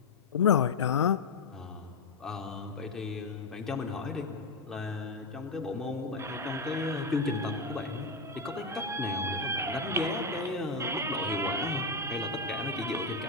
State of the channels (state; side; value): quieter; right; 3.5 dB